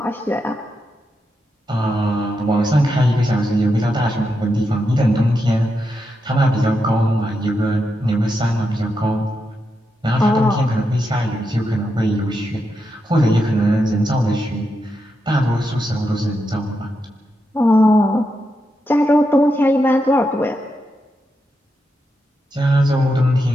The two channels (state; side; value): normal; both; correlation 0.85